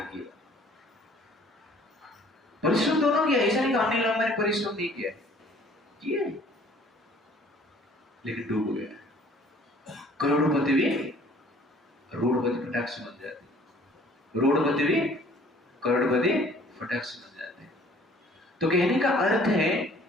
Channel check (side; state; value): both; normal; correlation 0.55